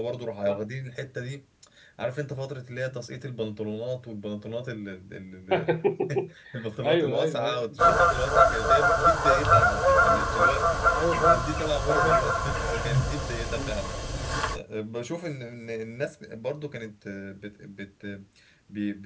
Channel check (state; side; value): identical; both; correlation 1.00